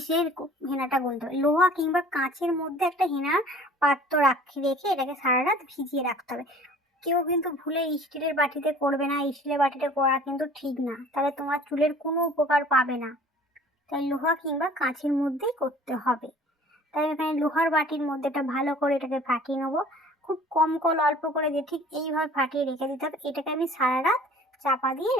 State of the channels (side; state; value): both; normal; correlation 0.49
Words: হেনাটা গুলতে হবে। লোহা কিংবা কাঁচের মধ্যে একটা হেনার পাত্র রেখে এটাকে সারা রাত ভিজিয়ে রাখতে হবে। কেউ কিন্তু ভুলে স্টিলের বাটিতে করবে না। স্টিলের বাটিতে করা কিন্তু ঠিক না, তাহলে তোমার চুলের কোনো উপকার পাবে না। তাই লোহা কিংবা কাঁচের মধ্যেই করতে হবে। তাই এখানে লোহার বাটির মধ্যে এটা ভালো করে এটাকে ফাটিয়ে নেবো। খুব কম কল অল্প করে দিয়ে ঠিক এইভাবে ফাটিয়ে রেখে দিতে হবে। এটাকে আমি সারা রাত চাপা দিয়ে